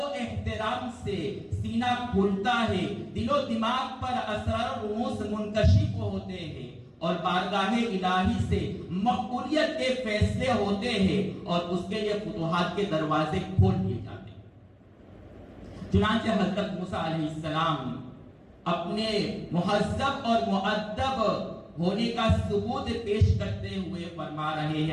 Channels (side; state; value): both; identical; correlation 1.00